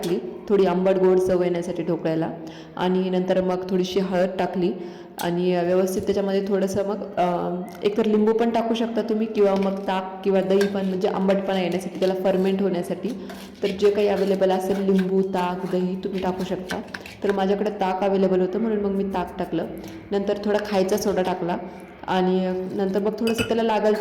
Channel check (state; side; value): identical; both; correlation 1.00